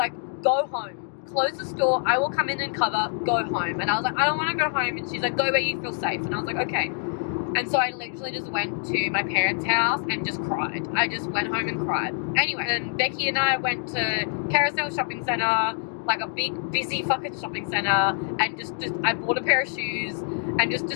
go home. Close the store. I will come in and cover. Go home. And I was like, I don't want to go home. And she's like, go where you feel safe. And I was like, okay. And so I literally just went to my parents' house and just cried. I just went home and cried. Anyway, and Becky and I went to Carousel Shopping Centre, a big, busy fucking shopping centre, and just I bought a pair of shoes and just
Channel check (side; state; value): right; silent; 61 dB below the other